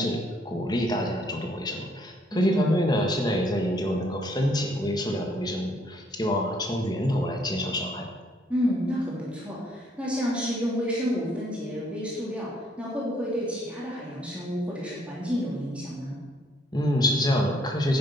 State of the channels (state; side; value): normal; both; correlation 0.67